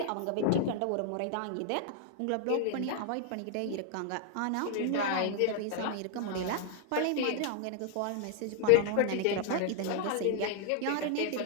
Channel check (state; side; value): different; both; correlation -0.01